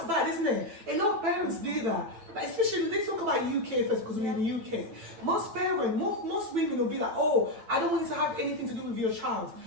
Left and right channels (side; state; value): left; late; 9.1 ms